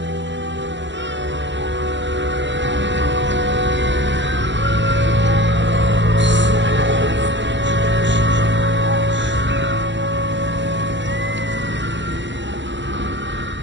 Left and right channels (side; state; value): left; late; 0.53 ms